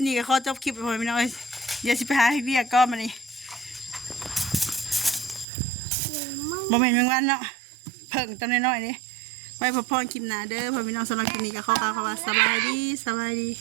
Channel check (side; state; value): left; drops out; at 5.5 s